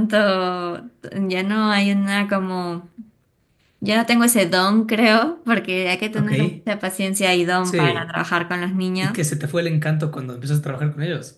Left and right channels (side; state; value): both; identical; correlation 1.00